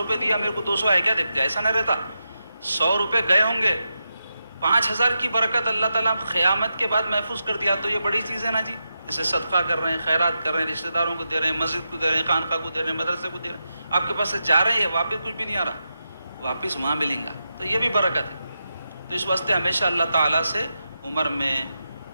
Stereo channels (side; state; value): both; inverted; correlation -0.88